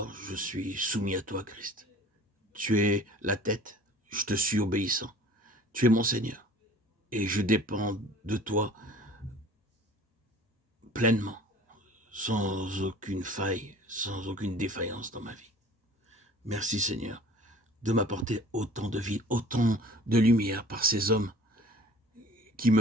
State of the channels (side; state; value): both; normal; correlation 0.47